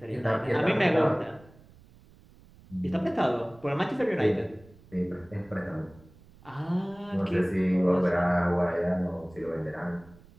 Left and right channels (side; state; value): right; noise; rumble, 25 dB below the sound